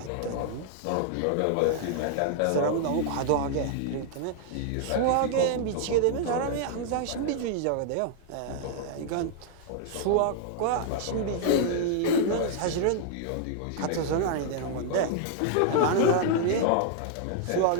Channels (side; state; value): both; different; correlation 0.00